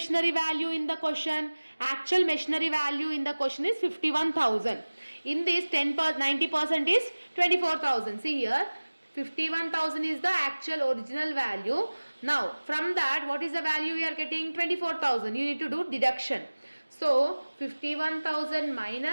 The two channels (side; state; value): both; inverted; correlation -1.00